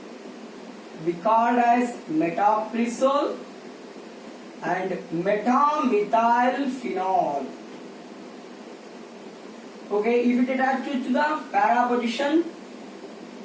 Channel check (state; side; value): identical; both; correlation 1.00